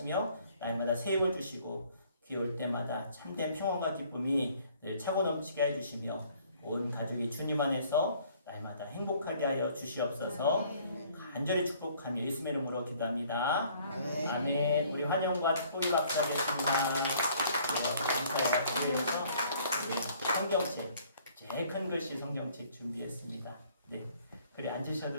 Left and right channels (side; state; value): both; inverted; correlation -0.59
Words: 날마다 새 힘을 주시고 귀에 올 때마다 참된 평안과 기쁨이 늘 차고 넘치게 해주시며 온 가족이 주님 안에서 날마다 행복하게 하여 주시옵소서. 간절히 축복하며 예수의 이름으로 기도합니다. 아멘. 우리 환영과 축복이 박수하겠습니다. 감사합니다. 성경책 제일 큰 글씨 성경책 준비했습니다. 네, 그래